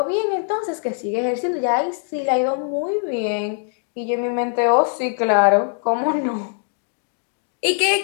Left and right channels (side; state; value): right; silent; digital silence